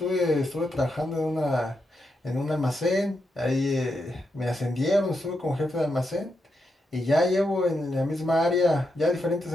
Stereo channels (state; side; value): normal; both; correlation 0.84